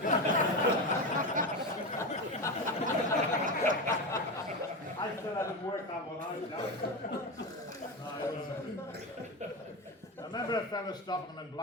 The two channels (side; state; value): both; normal; correlation 0.18